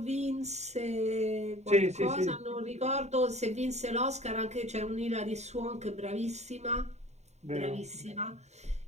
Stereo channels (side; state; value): left; late; 0.32 ms